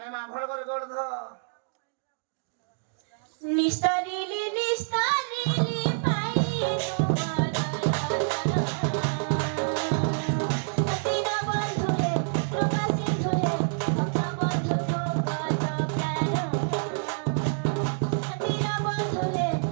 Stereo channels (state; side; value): silent; left; digital silence